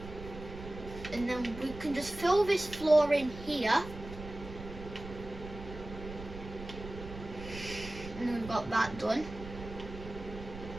And then we can just fill this floor in here. And then we've got that done.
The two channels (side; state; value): right; noise; rumble, 12 dB below the sound